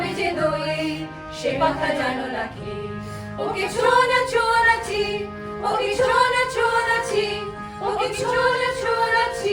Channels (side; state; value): both; identical; correlation 1.00